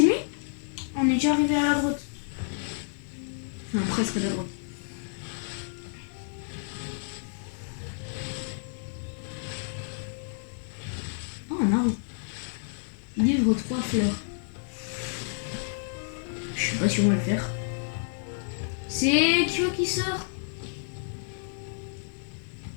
lui? On est déjà arrivé à la grotte. Non, presque à la grotte. Oh, un arbre. Livre 3 fleurs. Je sais pas si on va le faire. C'est Kyo qui sort.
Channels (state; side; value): silent; right; 58 dB below the other